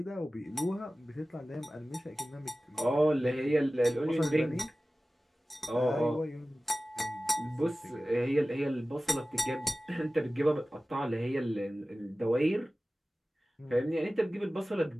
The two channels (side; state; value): both; normal; correlation 0.96